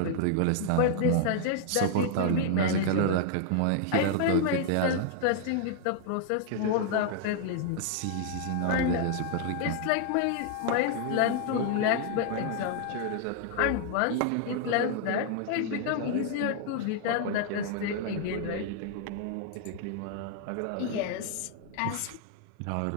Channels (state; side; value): different; both; correlation 0.00